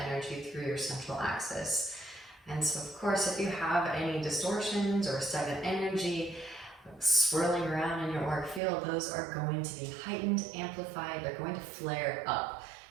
energy through your central axis. And so, of course, if you have any distortions or stagnant energy swirling around in your auric field, those are going to be heightened, amplified, they're going to flare up.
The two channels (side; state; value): left; drops out; at 8.6 s